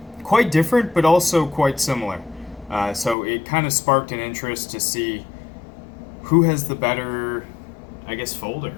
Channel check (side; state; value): right; drops out; at 3.2 s